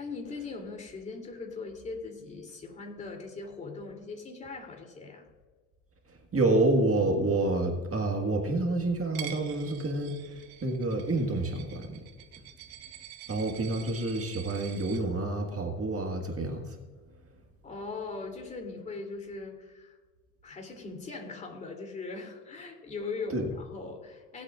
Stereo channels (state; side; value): normal; both; correlation 0.38